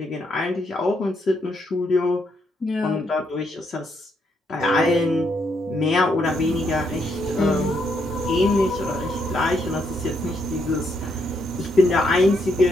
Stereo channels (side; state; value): both; normal; correlation 0.76